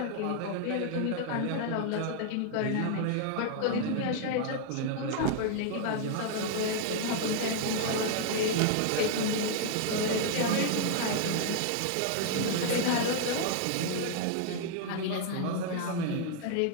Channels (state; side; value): different; both; correlation 0.00